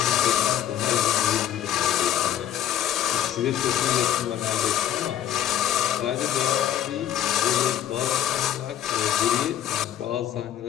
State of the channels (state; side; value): quieter; right; 11.1 dB